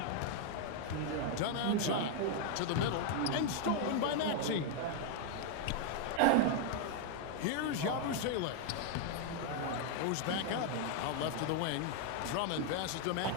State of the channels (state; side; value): different; both; correlation 0.00